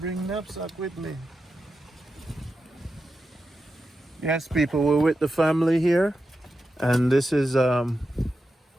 knapsack with me? Yes, people, we're with the family here, and this is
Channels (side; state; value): both; normal; correlation 0.89